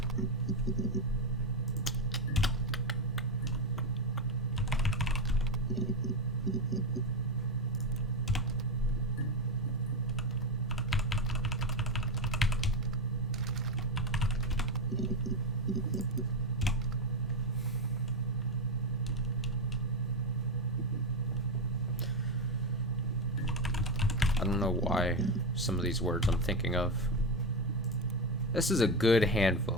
I don't know why some of these words I'm thinking of. This is a good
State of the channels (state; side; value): normal; both; correlation 0.12